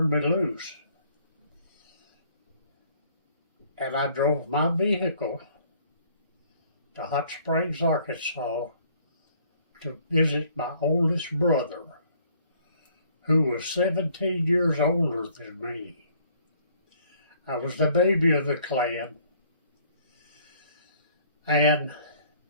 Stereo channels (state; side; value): inverted; both; correlation -0.60